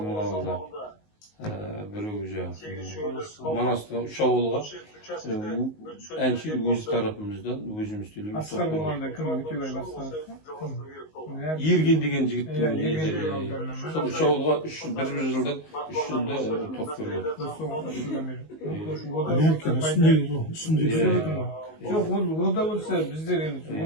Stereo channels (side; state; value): right; late; 19 ms